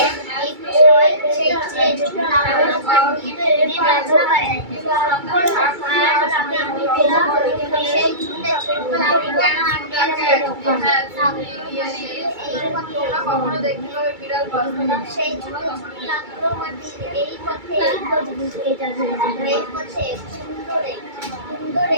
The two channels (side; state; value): left; late; 2.3 ms